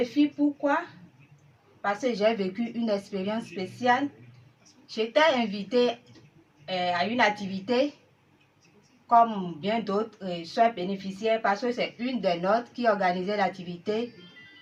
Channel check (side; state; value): both; identical; correlation 1.00